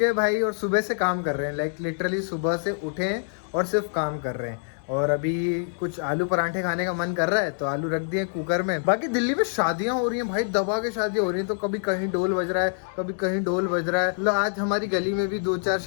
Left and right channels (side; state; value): right; silent; 61 dB below the other